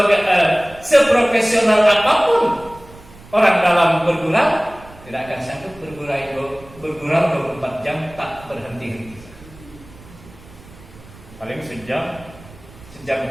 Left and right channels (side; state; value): right; noise; rumble, 21 dB below the sound